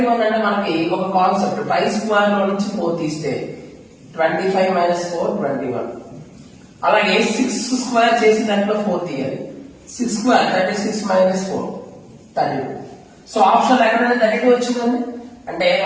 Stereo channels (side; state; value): both; identical; correlation 1.00